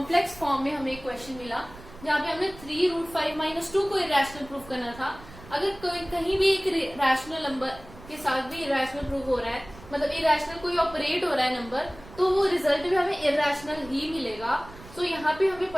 फॉर्म में हमें क्वेश्चन मिला जहाँ पे हमने 3 रूट 5 माइनस 2 को irrational प्रूव करना था. अगर कोई कहीं भी एक रैशनल नंबर के साथ भी इरैशनल प्रूव हो रहा है, मतलब इरैशनल कोई ऑपरेट हो रहा है नंबर, तो वो रिजल्ट भी हमें इरैशनल ही मिलेगा. सो यहाँ पे हमें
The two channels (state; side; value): noise; right; rumble, 19 dB below the sound